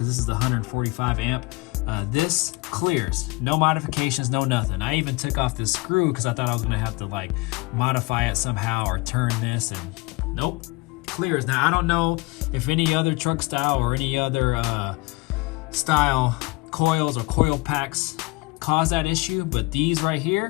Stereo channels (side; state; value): right; quieter; 24.7 dB